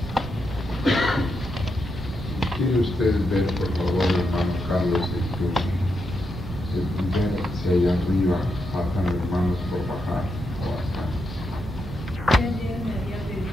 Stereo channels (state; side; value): noise; right; rumble, 11 dB below the sound